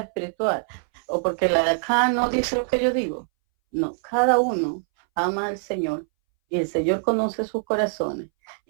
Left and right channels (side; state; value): left; silent; 61 dB below the other